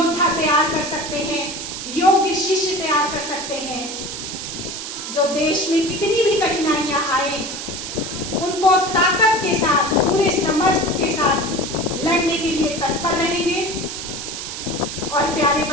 तैयार कर सकते हैं, योग्य शिष्य तैयार कर सकते हैं, जो देश में कितनी भी कठिनाइयां आए उनको ताकत के साथ, पूरे समर्थ के साथ लड़ने के लिए तत्पर रहेंगे। और प्यारे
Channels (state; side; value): noise; right; hiss, 7 dB below the sound